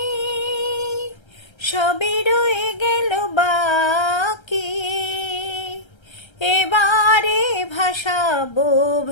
সবই রয়ে গেল বাকি এবারে ভাসাবো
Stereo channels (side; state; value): right; late; 1.3 ms